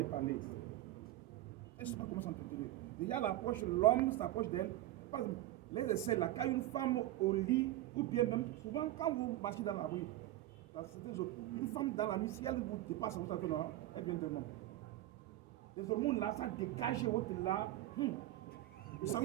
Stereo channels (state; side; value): quieter; left; 14.8 dB